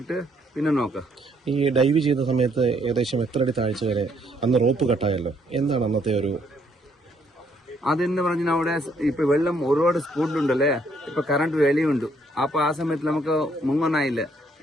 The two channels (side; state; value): both; normal; correlation 0.69